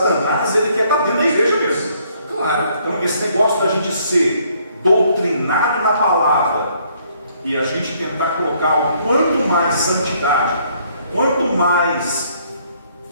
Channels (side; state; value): both; inverted; correlation -0.66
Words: ele quer estar dentro da igreja mesmo. Claro. Então esse negócio da gente ser doutrinado na palavra e a gente tentar colocar o quanto mais santidade, quanto mais